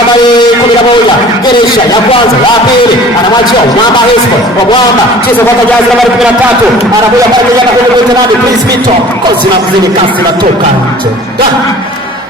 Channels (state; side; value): normal; both; correlation 0.47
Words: 11. Geresha ya kwanza, ya pili. Anamwachia Mama Hispo. Mwamba. Cheza kwa Jazz nambari 13. Anakuja pale kijana kwenye mtenani. Please Vito. Kozi na mzini kasi na toka nje.